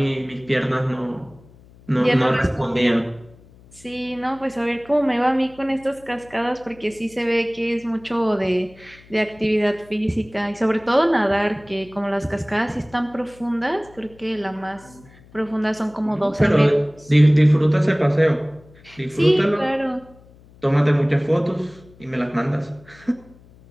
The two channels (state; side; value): noise; left; hum, 25 dB below the sound